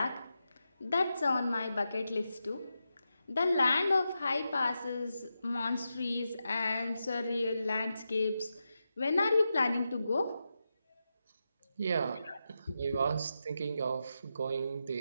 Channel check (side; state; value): both; inverted; correlation -0.88